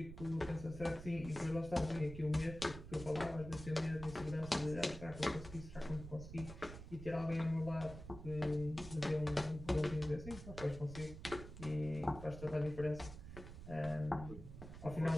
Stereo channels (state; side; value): noise; right; rumble, 11 dB below the sound